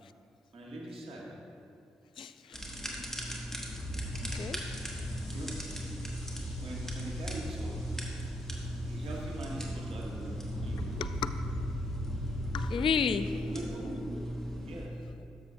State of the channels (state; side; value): normal; both; correlation 0.75